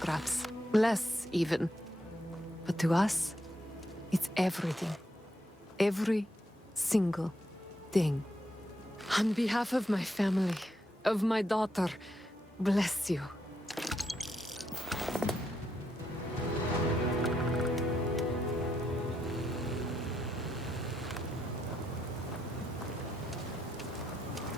Less, even. But to us, it's everything. Every single thing. On behalf of my family, of my daughter, bless you.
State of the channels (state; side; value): normal; both; correlation 0.79